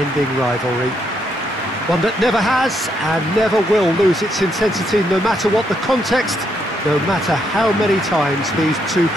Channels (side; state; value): both; normal; correlation 0.76